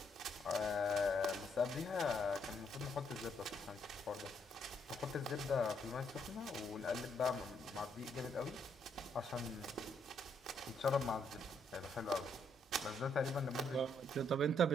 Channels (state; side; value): normal; both; correlation 0.73